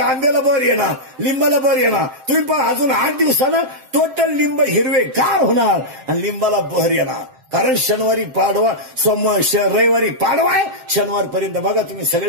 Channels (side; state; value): left; late; 7.7 ms